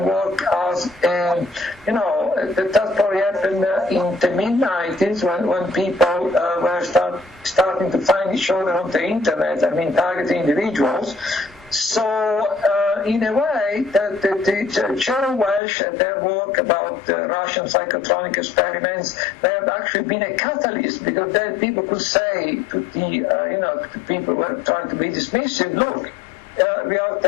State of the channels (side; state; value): right; drops out; at 15.6 s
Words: worked as, that probably happened in the mid-90s when people were starting to find each other on the internet, targeting individuals. So, in a way, the Cheryl Welch and their work about Russian psychotronic experiments, they have actually been a catalyst, because then people could say to the people who were trying to be dismissive, look, we are